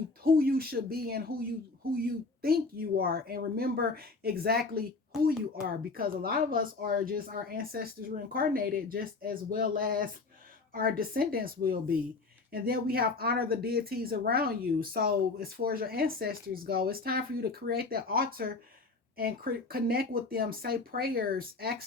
who you should be and who you think you are, and remember exactly who you are, because a lot of us are just our ancestors reincarnated, just as well as our descendants will be. And then we have honor the deities around you. So as far as your ancestors go, it's time for you to create that altar and connect with them, say prayers,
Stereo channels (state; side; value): quieter; right; 3.9 dB